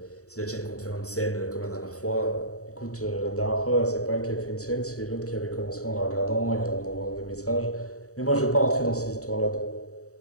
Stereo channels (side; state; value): right; late; 0.65 ms